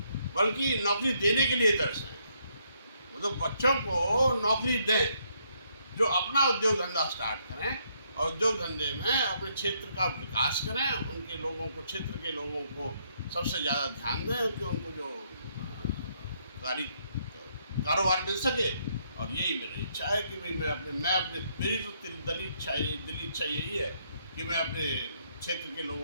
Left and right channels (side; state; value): both; inverted; correlation -0.72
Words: बल्कि नौकरी देने के लिए तरसें, मतलब बच्चों को नौकरी दें, जो अपना उद्योग धंधा स्टार्ट करें और उद्योग धंधे में अपने क्षेत्र का विकास करें, उनके लोगों को, क्षेत्र के लोगों को सबसे ज़्यादा ध्यान दें कि उनको जो कारोबार मिल सके। और यही मेरी इच्छा है कि भाई मेरी तो दिली इच्छा यही है कि मैं अपने क्षेत्र के